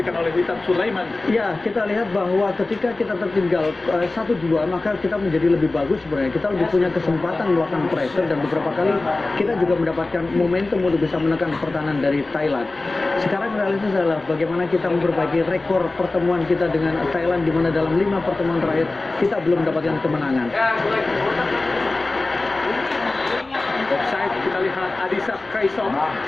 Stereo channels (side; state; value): right; quieter; 3.2 dB